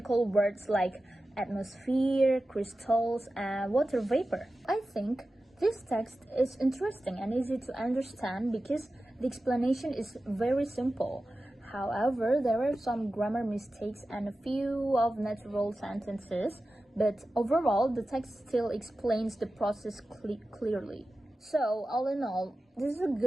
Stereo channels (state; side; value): normal; both; correlation 0.94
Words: words like atmosphere, crystals, and water vapor. I think this text is interesting and easy to understand because the explanation is very simple. However, there are some grammar mistakes and a few of natural sentences, but overall, the text still explains the process clearly. So, all in all, this is a